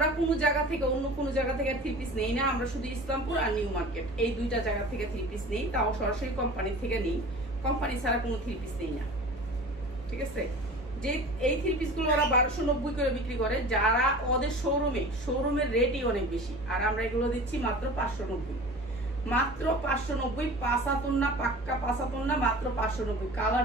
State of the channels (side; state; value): both; normal; correlation 0.39